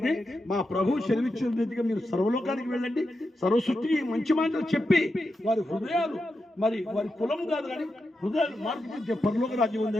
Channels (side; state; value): both; normal; correlation 0.88